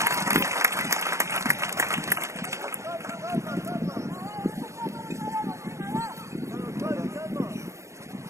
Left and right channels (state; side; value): late; left; 0.14 ms